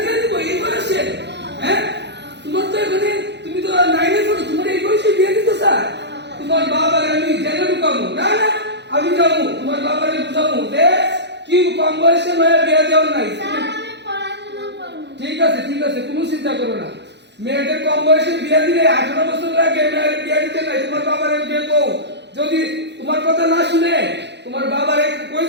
দিয়ে দিব এই বয়সে? হ্যাঁ তোমার তো এখানে তুমি তো নাইনে পড়ো, তোমার এই বয়সে বিয়ে দিতে স্যার? তোমার বাবার আমি জেলে ঢুকাবো না না, আমি যাবো তোমার বাবারে বুঝাবো যে কি কম বয়সে মেয়ে বিয়ে দেওয়া নাই। ঠিক আছে ঠিক আছে, কোনো চিন্তা করো না। মেয়েদের কম বয়সে বিয়ে দিলে 18 বছর আগে মেয়ের বিয়ে দিতে নাই। তোমার বাবারে বিয়ে কও, যদি তোমার কথা না শুনে তোমার বাবারে কই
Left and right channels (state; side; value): late; left; 0.50 ms